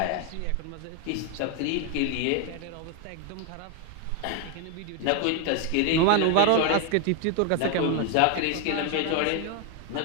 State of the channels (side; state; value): both; different; correlation 0.01